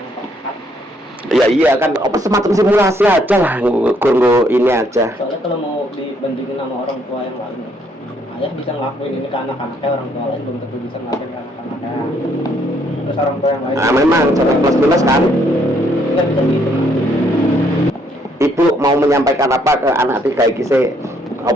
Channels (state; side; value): normal; both; correlation 0.69